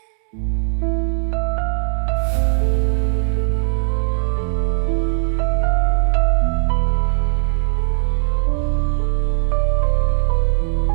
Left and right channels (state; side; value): silent; left; digital silence